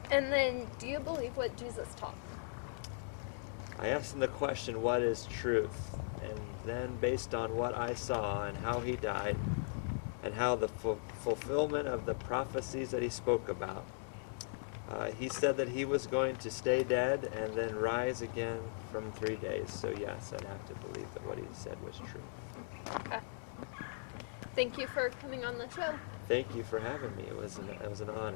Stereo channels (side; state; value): right; silent; 52 dB below the other